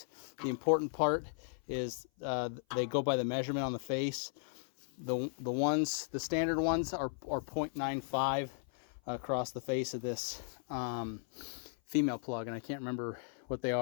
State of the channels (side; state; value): right; silent; 54 dB below the other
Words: The important part is they go by the measurement on the face. The standard ones are 0.95 across the face of this female plug, and I can't remember what they